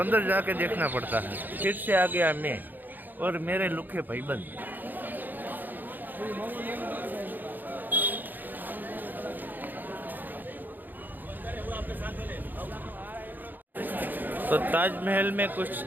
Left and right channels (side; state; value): left; late; 0.087 ms